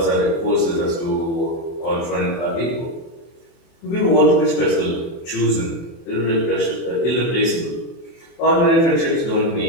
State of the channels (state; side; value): late; right; 24 ms